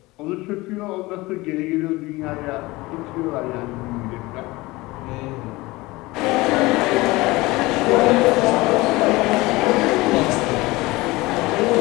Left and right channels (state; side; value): quieter; right; 21.1 dB